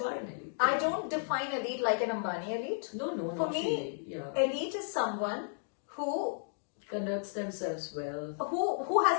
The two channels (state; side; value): silent; right; digital silence